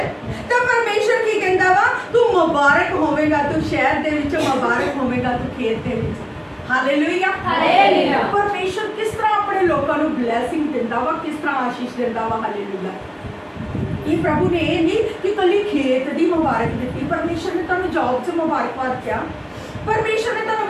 ਤੇ ਪਰਮੇਸ਼ਰ ਕੀ ਕਹਿੰਦਾ ਵਾ, ਤੂੰ ਮੁਬਾਰਕ ਹੋਵੇਂਗਾ ਤੂੰ ਸ਼ਹਿਰ ਦੇ ਵਿੱਚ, ਮੁਬਾਰਕ ਹੋਵੇਂਗਾ ਤੂੰ ਖੇਤ ਦੇ ਵਿੱਚ। Hallelujah, hallelujah. ਪਰਮੇਸ਼ਰ ਕਿਸ ਤਰ੍ਹਾਂ ਆਪਣੇ ਲੋਕਾਂ ਨੂੰ ਬਲੇਸਿੰਗ ਦਿੰਦਾ ਵਾ, ਕਿਸ ਤਰ੍ਹਾਂ ਆਸ਼ੀਸ਼ ਦਿੰਦਾ ਵਾ। ਹਾਲੇਲੂਇਆ। ਇਹ ਪ੍ਰਭੂ ਨੇ ਇਹ ਨਹੀਂ ਕਿ ਕੱਲੀ ਖੇਤ ਦੀ ਮੁਬਾਰਕ ਦਿੱਤੀ, ਪਰਮੇਸ਼ਰ ਨੇ ਤੁਹਾਨੂੰ ਜੌਬ 'ਚ ਮੁਬਾਰਕਬਾਦ ਕਿਹਾ, ਪਰਮੇਸ਼ਰ ਨੇ ਤੁਹਾਨੂੰ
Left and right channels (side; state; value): both; identical; correlation 1.00